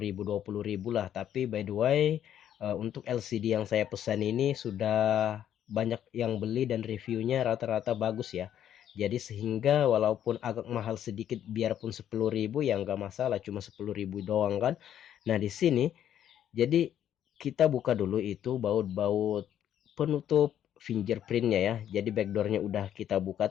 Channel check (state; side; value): quieter; right; 10.4 dB